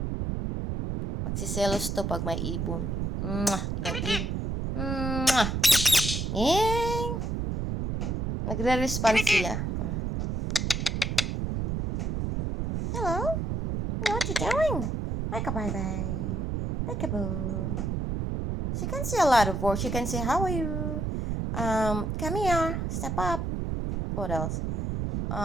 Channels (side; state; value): right; noise; rumble, 1 dB below the sound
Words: Magsiselos to pag may ibon. Ibang ibon. Yay! Nagre-respond siya. Hello? What you doing? Like a bye-bye. Peekaboo. She can say a lot of words. She can say, how are you? Come here. Step up. What else?